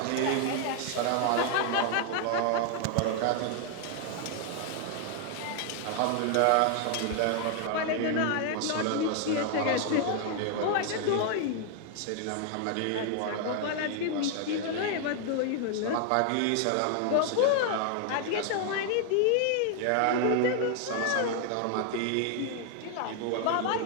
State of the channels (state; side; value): different; both; correlation 0.00